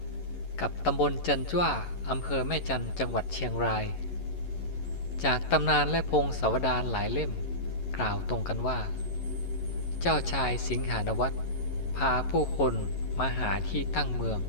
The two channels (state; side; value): late; right; 11 ms